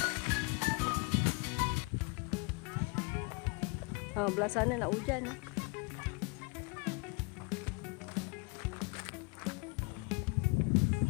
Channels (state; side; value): quieter; right; 30.5 dB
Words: Belah sana nak hujan.